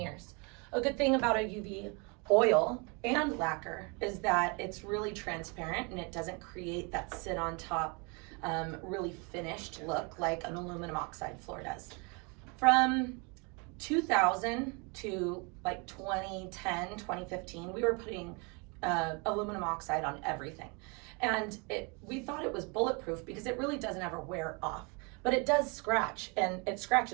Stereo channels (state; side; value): quieter; left; 31.5 dB